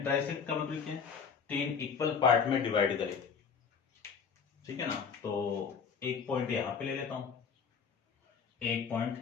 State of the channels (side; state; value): right; quieter; 6.3 dB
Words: का मतलब क्या है, 3 इक्वल पार्ट में डिवाइड करे, ठीक है ना। तो एक पॉइंट यहां पे ले लेता हूं, एक